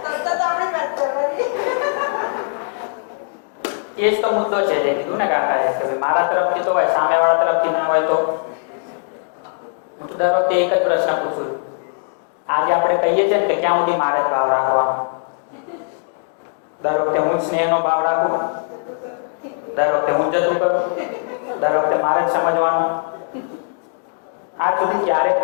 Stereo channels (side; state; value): right; silent; digital silence